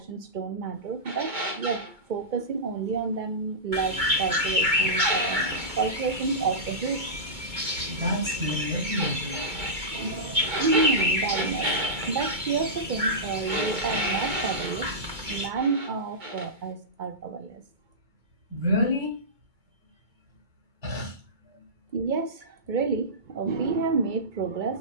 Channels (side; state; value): left; late; 2.2 ms